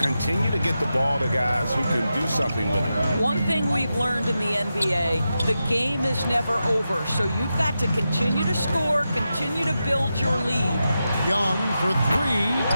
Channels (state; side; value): inverted; both; correlation -0.89